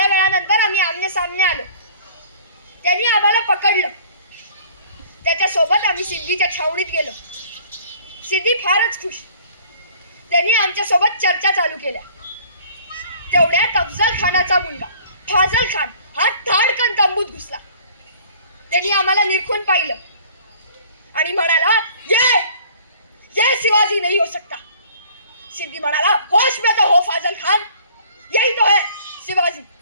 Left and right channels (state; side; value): inverted; both; correlation -0.52